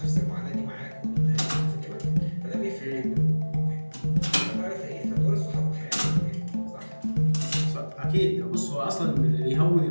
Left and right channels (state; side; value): inverted; both; correlation -1.00